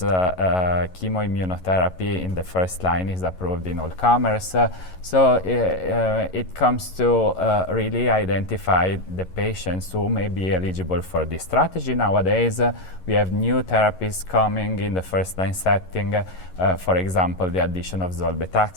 in the first line is approved in all comers. So it comes to really identify the patients who may be eligible for this strategy. Nowadays, we have new therapies coming in the first-line setting. For example, the addition of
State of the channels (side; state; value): right; late; 11 ms